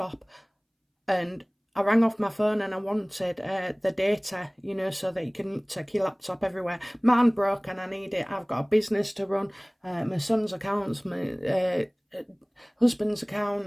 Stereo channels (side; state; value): both; identical; correlation 1.00